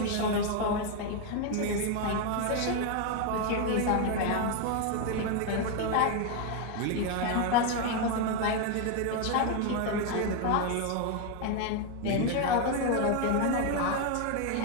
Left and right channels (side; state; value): both; different; correlation 0.01